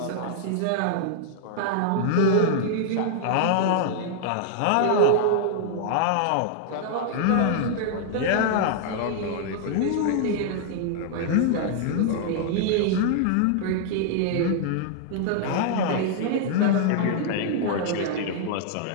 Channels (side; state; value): both; different; correlation -0.01